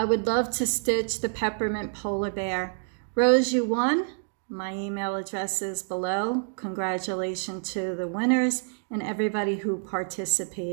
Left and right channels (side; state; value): left; silent; digital silence